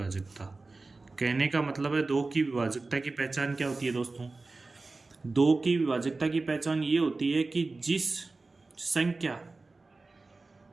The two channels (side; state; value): left; quieter; 3.5 dB